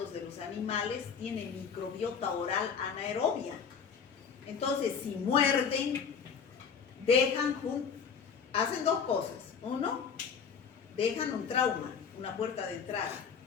de los animales, tiene microbiota oral anaerobia. Entonces, si muerden, hacen dos cosas. Uno, dejan un trauma, una puerta de entrada,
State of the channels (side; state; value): right; quieter; 6.5 dB